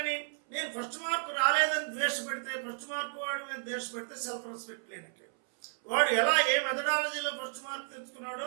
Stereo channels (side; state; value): left; silent; 56 dB below the other